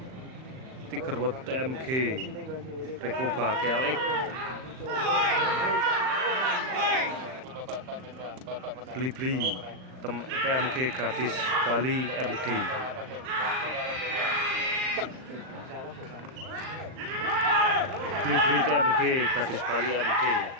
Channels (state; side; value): late; left; 38 ms